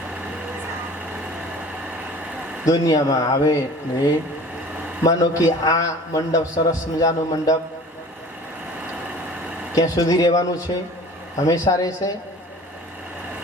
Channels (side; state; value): both; normal; correlation 0.44